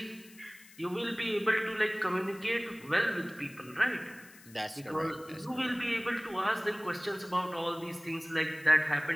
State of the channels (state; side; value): noise; left; hiss, 22 dB below the sound